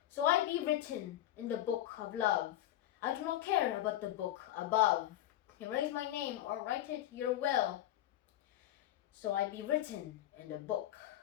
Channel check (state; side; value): quieter; right; 13.5 dB